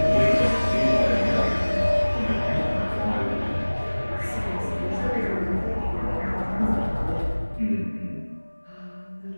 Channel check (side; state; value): both; inverted; correlation -1.00